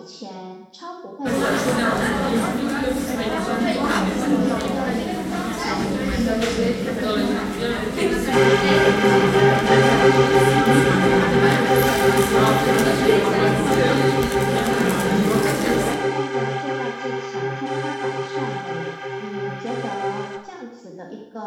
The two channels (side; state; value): both; identical; correlation 1.00